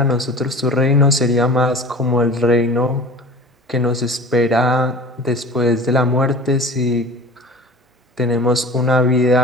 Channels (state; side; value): normal; both; correlation 0.38